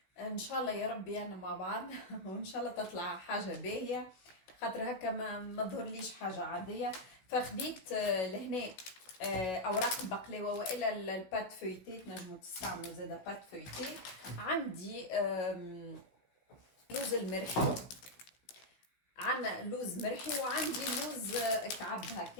ان شاء الله يا ربي انا مع بعض وان شاء الله تطلع حاجه باهيه، خاطر هكا ما ظهرليش حاجه عاديه. فخديت لهنا اوراق البقلاوه والا البات فويتي، تنجموا تستعملوا زاده بات فويتي. عندي لوز المرحي، عندنا لوز مرحي وعندي لوز كعب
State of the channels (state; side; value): late; right; 16 ms